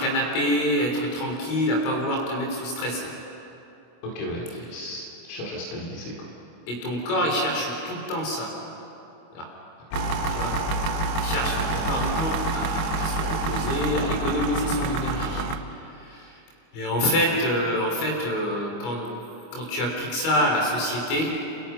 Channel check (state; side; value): late; right; 25 ms